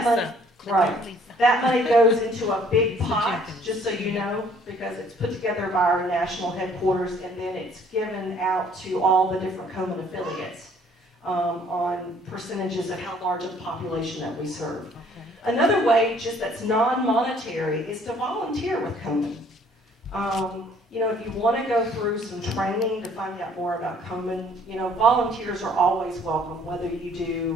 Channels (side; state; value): both; normal; correlation 0.59